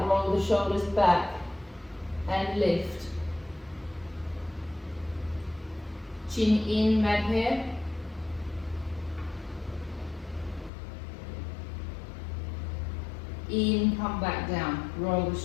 roll the shoulders back and lift. Chin in, mad hair. In, come back down, roll the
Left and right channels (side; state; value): right; drops out; at 10.7 s